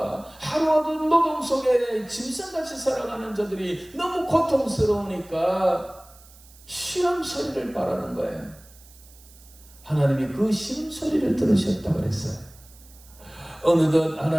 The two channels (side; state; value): right; noise; hiss, 24 dB below the sound